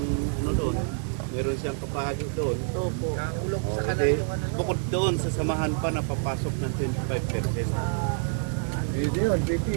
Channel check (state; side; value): silent; left; digital silence